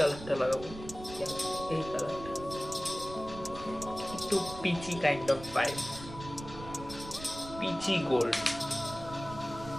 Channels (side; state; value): right; noise; rumble, 13 dB below the sound